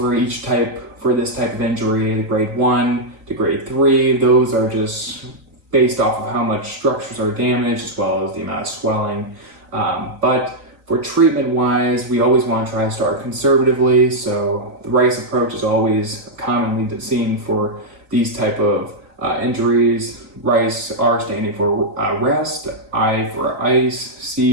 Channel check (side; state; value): left; late; 3.9 ms